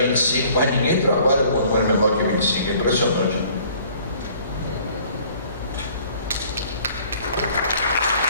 mas ninguém trabalha com um número menor que 25. É impressionante.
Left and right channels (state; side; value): inverted; both; correlation -0.55